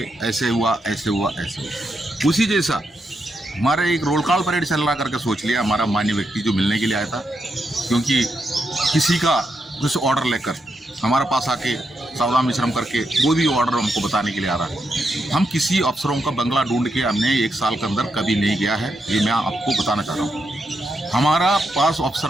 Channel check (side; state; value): both; normal; correlation 0.83